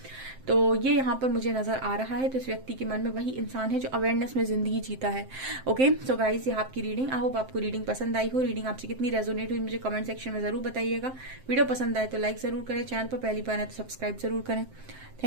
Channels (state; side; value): late; left; 7.7 ms